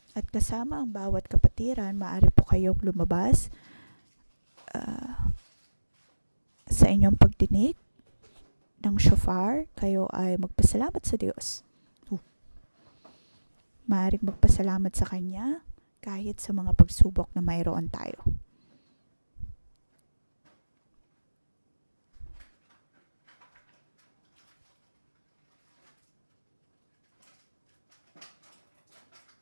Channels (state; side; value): inverted; both; correlation -1.00